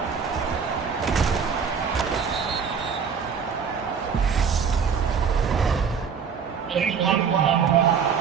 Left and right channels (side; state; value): left; quieter; 6.5 dB